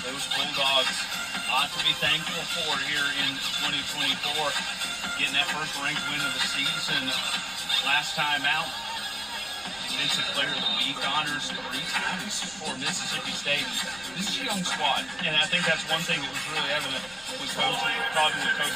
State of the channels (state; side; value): noise; left; rumble, 24 dB below the sound